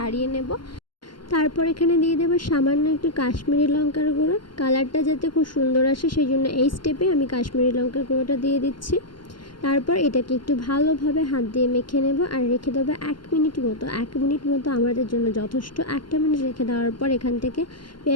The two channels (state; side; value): late; right; 0.72 ms